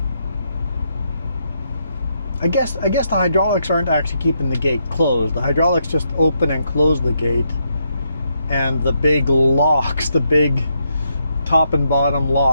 I guess the hydraulics aren't actually keeping the gate closed. The hydraulics just open and close the gate. And the big locks, the big top and bottom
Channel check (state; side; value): inverted; both; correlation -0.79